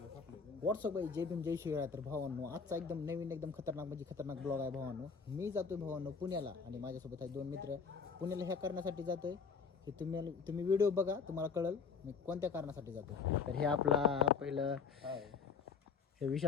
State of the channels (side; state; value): right; quieter; 5.6 dB